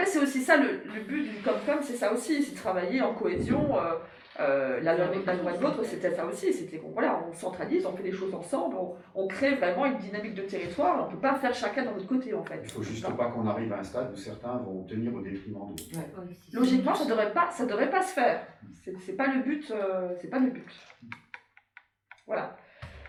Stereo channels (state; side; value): identical; both; correlation 1.00